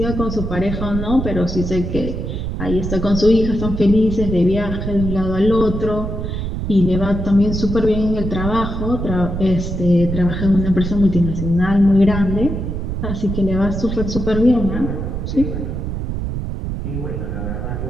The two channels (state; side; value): noise; right; rumble, 4 dB below the sound